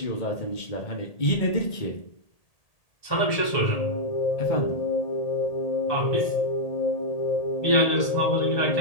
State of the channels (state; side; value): late; right; 1.8 ms